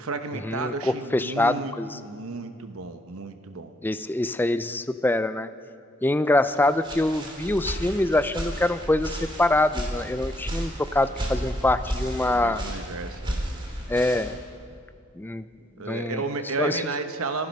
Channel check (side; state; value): both; normal; correlation 0.72